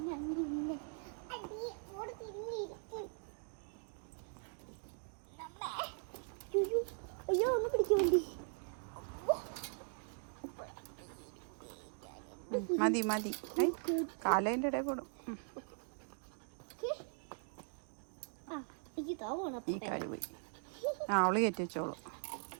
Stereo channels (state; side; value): silent; left; 51 dB below the other